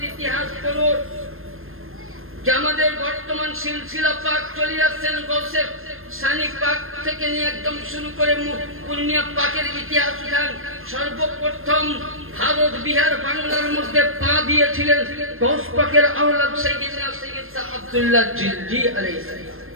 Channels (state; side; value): late; left; 0.60 ms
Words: ইতিহাস পড়ুন, যে আমাদের বর্তমান সিলসিলা পাক চলে আসছেন গৌসে সানি পাক থেকে নিয়ে একদম শুরু করে পূর্ণিয়া পাকের ইতিহাস উঠান। সর্বপ্রথম ভারত বিহার বাংলার মধ্যে পা দিয়েছিলেন গৌস পাকের আওলাদ সাইয়েদনা সৈয়দ শাহ আব্দুল্লাহ জিলজি আলাইহিস সালাম।